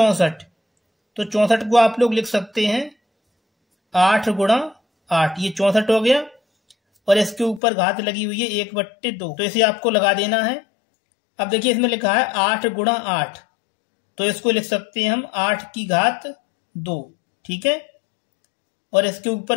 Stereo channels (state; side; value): drops out; right; at 7.6 s